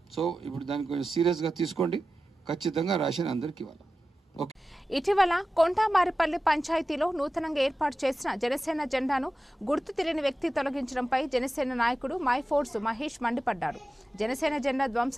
సో ఇప్పుడు దాన్ని కొంచెం సీరియస్గా తీసుకోండి. ఖచ్చితంగా రేషన్ అందరికి ఇవ్వాలి. ఇటీవల కొంటామారిపల్లి పంచాయతీలో నూతనంగా ఏర్పాటు చేసిన జనసేన జెండాను గుర్తు తెలియని వ్యక్తి తొలగించడంపై జనసేన నాయకుడు మైఫోర్స్ మహేష్ మండిపడ్డారు. జనసేన జెండా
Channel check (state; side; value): normal; both; correlation 0.94